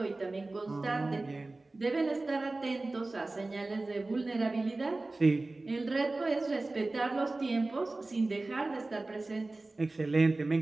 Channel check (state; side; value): quieter; left; 3.1 dB